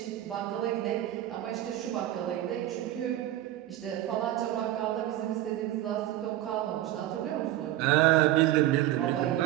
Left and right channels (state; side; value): quieter; left; 14.0 dB